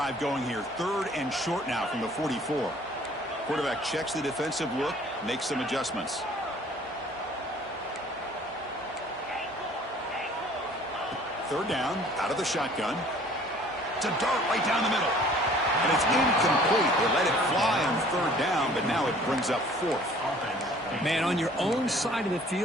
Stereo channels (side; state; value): both; normal; correlation 0.53